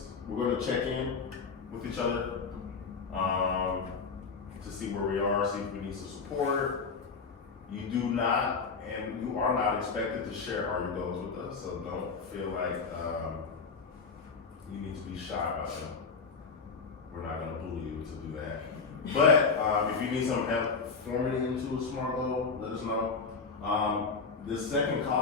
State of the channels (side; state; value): right; quieter; 4.9 dB